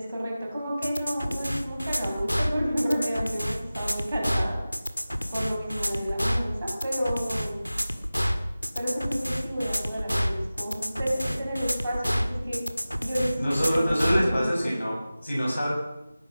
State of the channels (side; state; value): both; inverted; correlation -0.96